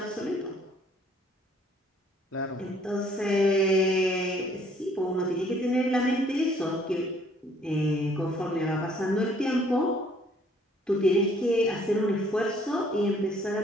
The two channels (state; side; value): normal; both; correlation 0.61